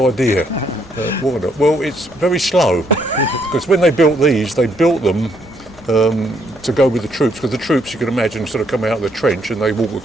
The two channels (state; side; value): noise; right; hum, 30 dB below the sound